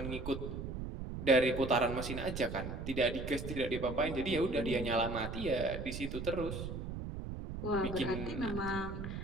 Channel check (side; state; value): right; noise; rumble, 6 dB below the sound